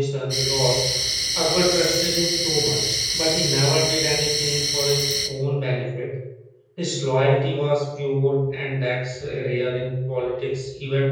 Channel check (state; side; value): identical; both; correlation 1.00